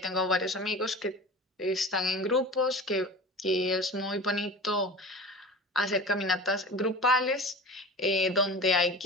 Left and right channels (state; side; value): normal; both; correlation 0.35